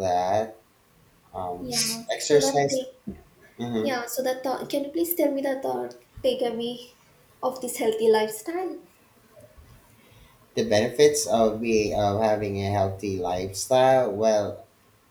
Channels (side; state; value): both; identical; correlation 1.00